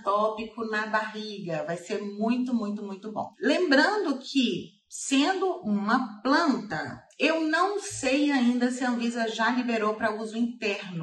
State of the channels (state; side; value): identical; both; correlation 1.00